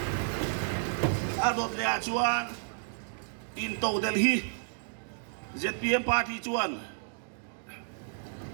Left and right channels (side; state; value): left; silent; digital silence